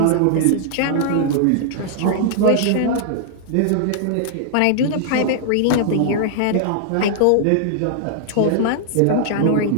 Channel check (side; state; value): both; different; correlation -0.01